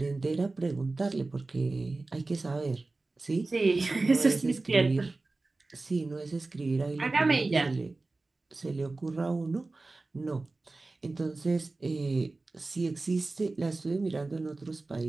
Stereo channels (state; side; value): quieter; left; 3.3 dB